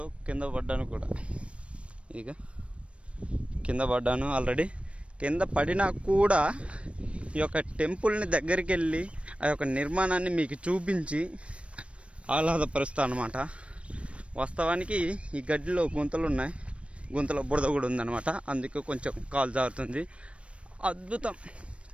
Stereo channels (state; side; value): late; left; 0.061 ms